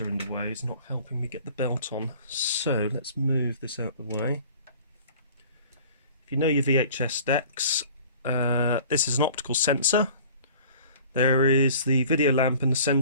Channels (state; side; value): inverted; both; correlation -0.47